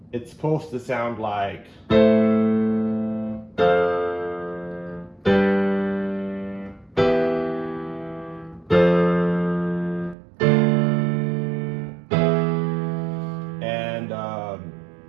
It's supposed to sound like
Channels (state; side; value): drops out; left; at 10.2 s